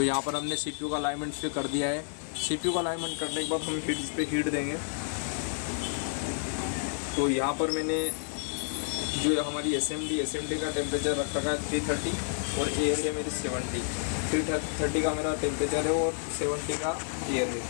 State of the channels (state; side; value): silent; right; 58 dB below the other